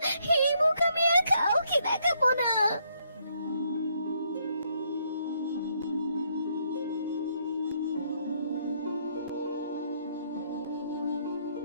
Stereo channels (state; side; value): inverted; both; correlation -0.72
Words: এই মুখ আমি আর কাউকে দেখাবো না।